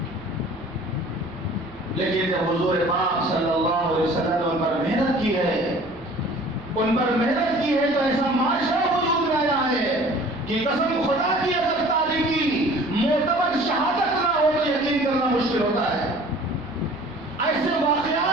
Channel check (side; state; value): right; noise; hum, 25 dB below the sound